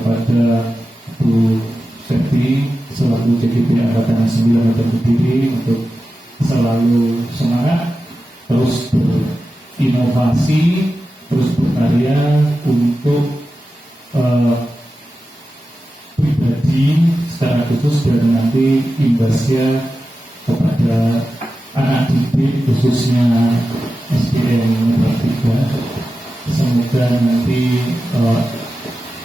Bu Septi selaku CGP Angkatan 9 Metro Kediri untuk selalu semangat, terus berinovasi, terus berkarya untuk pribadi secara khusus dan nanti imbasnya kepada anak didik khususnya SDN Metro 3. Semoga nanti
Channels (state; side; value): normal; both; correlation 0.92